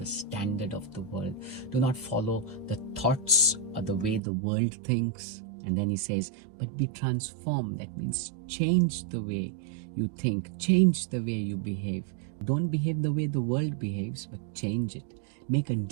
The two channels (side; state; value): left; drops out; at 4.2 s